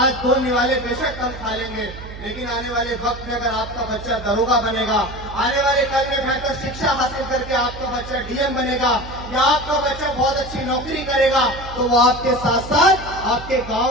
2 निवाले बेशक कम खा लेंगे, लेकिन आने वाले वक्त में अगर आपका बच्चा दरोगा बनेगा, आने वाले कल में बेहतर शिक्षा हासिल करके आपका बच्चा डीएम बनेगा या आपका बच्चा बहुत अच्छी नौकरी करेगा, तो वो आपके साथ साथ आपके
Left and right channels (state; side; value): noise; right; hum, 13 dB below the sound